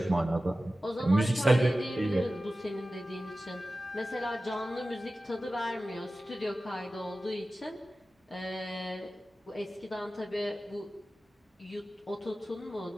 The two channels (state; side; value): normal; both; correlation 0.95